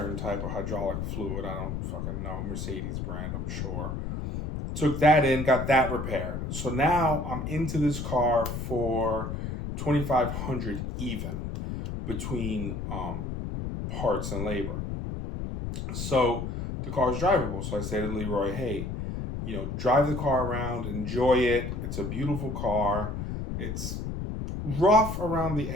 type of hydraulic fluid. I don't fucking know. Mercedes brand, I'm sure. Took that in, got that repaired. So now I'm into this car for $2,500 even between parts and labor. So the car is drivable. So I say to Leroy, hey, drive the car around, enjoy it. It's a beautiful car. It's rough around the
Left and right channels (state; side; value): noise; left; rumble, 4 dB below the sound